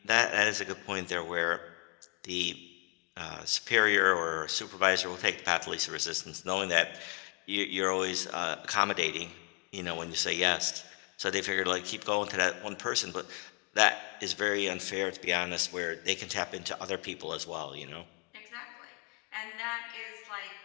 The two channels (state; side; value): quieter; right; 34.8 dB